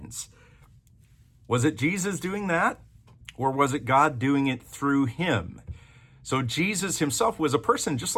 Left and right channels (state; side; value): identical; both; correlation 1.00